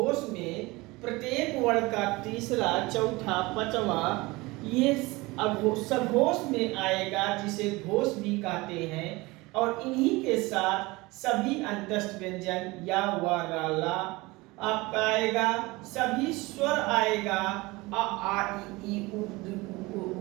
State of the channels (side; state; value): left; quieter; 22.4 dB